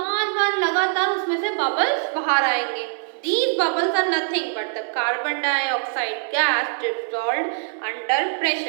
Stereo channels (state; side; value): silent; left; digital silence